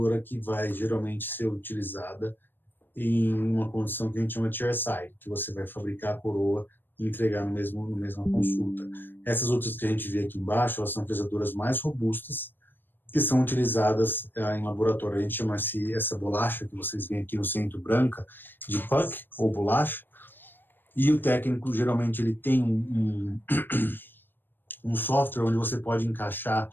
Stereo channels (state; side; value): late; right; 0.095 ms